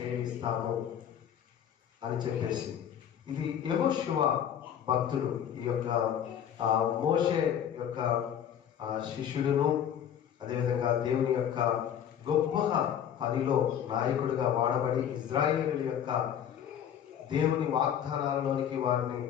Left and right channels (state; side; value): quieter; right; 9.3 dB